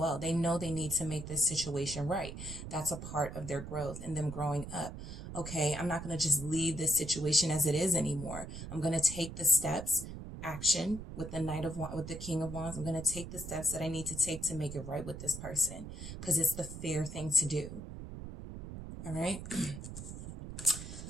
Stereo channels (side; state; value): right; noise; rumble, 9 dB below the sound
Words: They know they need to make this situation right. That's a part of their growth and them growing up. Okay. I'm not going to just leave this situation as it is anymore. I'm going to take the steps, action with the with the King of Wands. I'm going to take the steps that I need to take to make it right with this person because it's the fair thing to do. All right.